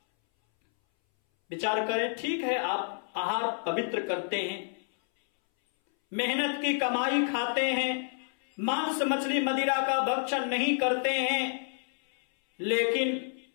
विचार करें, ठीक है आप आहार पवित्र करते हैं, मेहनत की कमाई खाते हैं, मांस मछली मदिरा का भक्षण नहीं करते हैं, लेकिन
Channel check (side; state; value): right; silent; 58 dB below the other